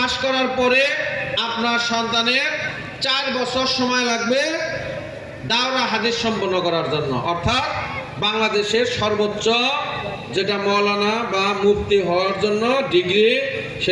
করার পরে আপনার সন্তানের 4 বছর সময় লাগবে দাওরা হাদিস সম্পন্ন করার জন্য, অর্থাৎ বাংলাদেশের সর্বোচ্চ যেটা মৌলানা বা মুফতি হওয়ার জন্য ডিগ্রি,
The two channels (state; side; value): identical; both; correlation 1.00